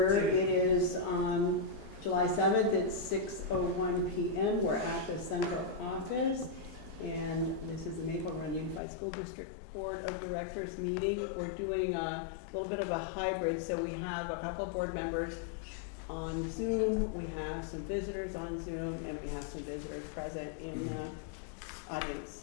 It is July 7th, it's 6:01 p.m. We're at the central office, and this is the Maple Run Unified School District Board of Directors meeting. We're doing a little bit of a hybrid, so we have a couple of board members on Zoom, we have some visitors on Zoom, and we have some visitors present in the audience,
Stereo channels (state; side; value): drops out; right; at 8.8 s